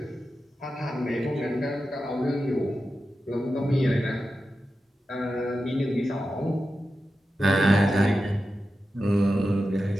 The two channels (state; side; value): normal; both; correlation 0.91